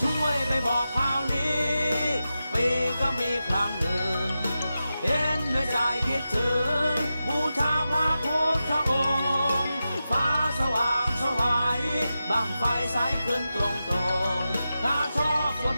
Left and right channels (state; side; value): inverted; both; correlation -0.91